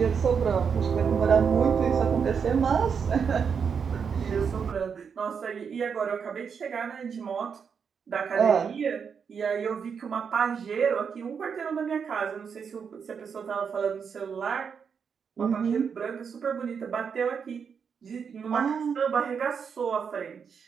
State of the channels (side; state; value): left; quieter; 6.5 dB